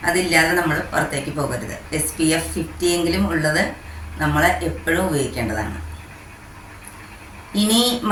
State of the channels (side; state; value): both; identical; correlation 1.00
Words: അതില്ലാതെ നമ്മൾ പുറത്തേക്ക് പോകരുത്. SPF 50 എങ്കിലും ഉള്ളത് നമ്മൾ എപ്പോഴും ഉപയോഗിക്കേണ്ടതാണ്. ഇനി